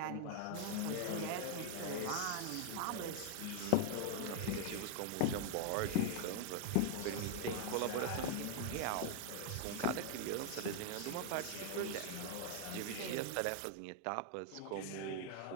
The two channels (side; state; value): both; different; correlation 0.00